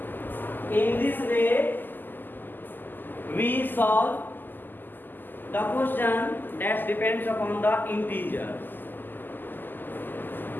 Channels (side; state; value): right; late; 0.090 ms